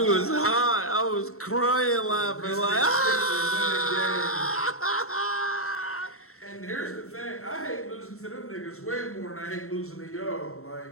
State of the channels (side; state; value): right; late; 0.63 ms